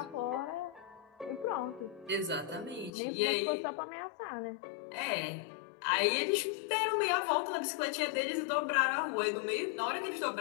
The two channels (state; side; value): drops out; right; at 2.9 s